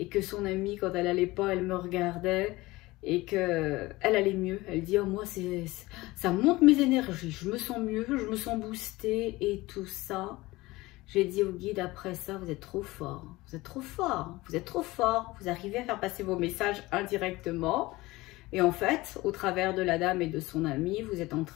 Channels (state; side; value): quieter; right; 20.2 dB